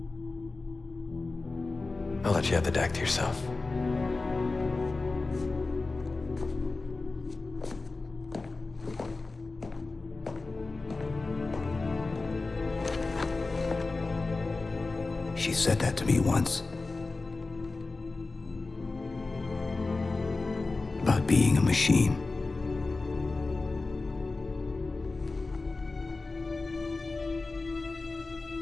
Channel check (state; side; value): quieter; right; 3.6 dB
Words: I'll let you have the deck to yourself. She said that to me once. About being a machine.